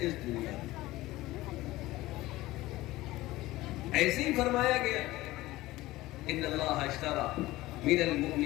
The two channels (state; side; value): quieter; right; 17.9 dB